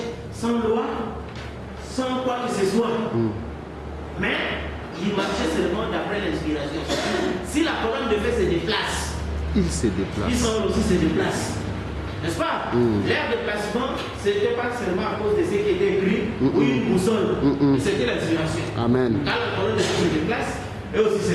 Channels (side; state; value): both; identical; correlation 1.00